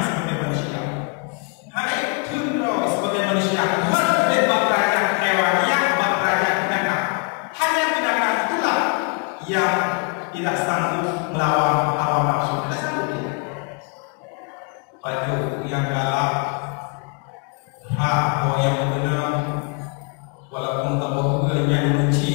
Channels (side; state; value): right; quieter; 38.1 dB